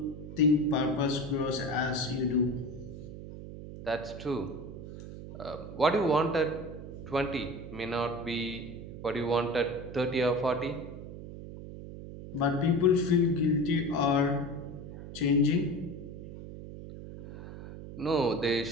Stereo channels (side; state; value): right; noise; hum, 11 dB below the sound